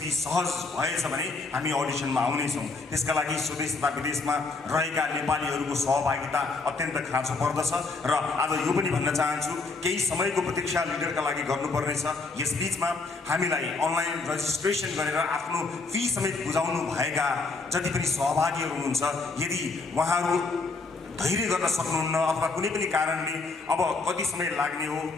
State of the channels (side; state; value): right; quieter; 3.8 dB